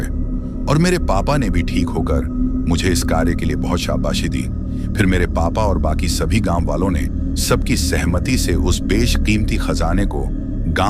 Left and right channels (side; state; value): both; identical; correlation 1.00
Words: और मेरे पापा ने भी ठीक होकर मुझे इस कार्य के लिए बहुत शाबाशी दी। फिर मेरे पापा और बाकी सभी गांव वालों ने सबकी सहमति से उस बेशकीमती खजाने को